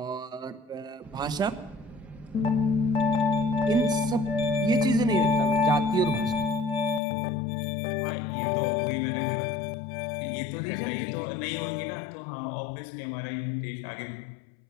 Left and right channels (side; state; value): right; drops out; at 7.0 s